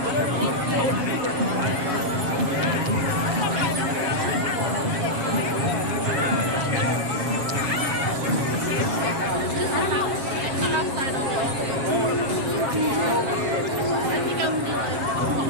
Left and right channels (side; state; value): left; late; 7.6 ms